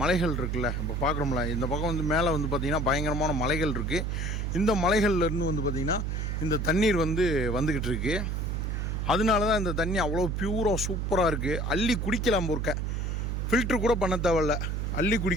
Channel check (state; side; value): noise; right; hum, 1 dB below the sound